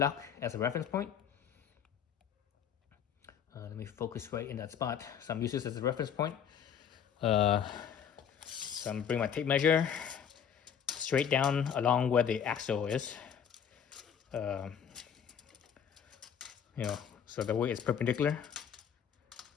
as a reference point. Let me focus right in that spot. So I'm using this as a reference point. So I'm gonna bring my tape measure straight down along where the axle is. You know, so the way it's perpendicular.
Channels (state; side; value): quieter; right; 8.2 dB